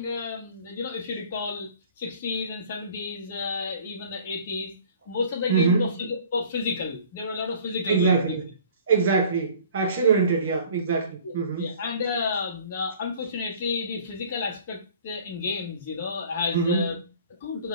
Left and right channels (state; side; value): inverted; both; correlation -0.50